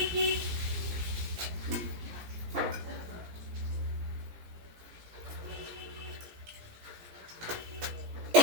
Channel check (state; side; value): late; left; 17 ms